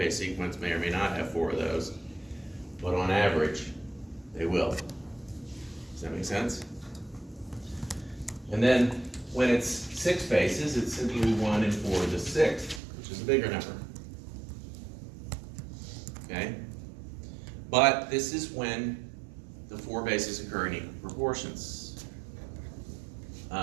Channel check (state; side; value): drops out; left; at 12.8 s